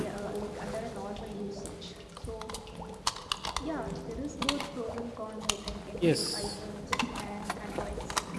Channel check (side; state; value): both; identical; correlation 1.00